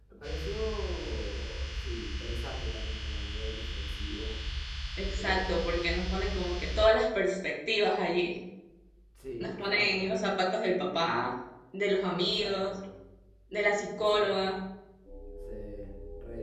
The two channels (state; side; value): identical; both; correlation 1.00